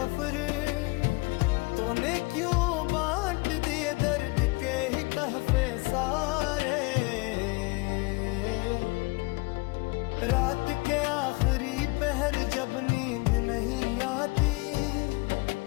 तूने क्यों बांट दिए दर्द के ही तहफे सारे। रात के आखिरी पहर जब नींद नहीं आती,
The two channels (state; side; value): quieter; right; 25.9 dB